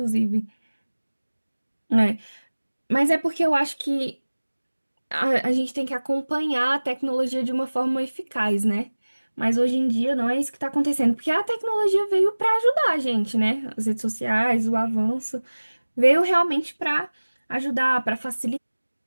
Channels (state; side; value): inverted; both; correlation -1.00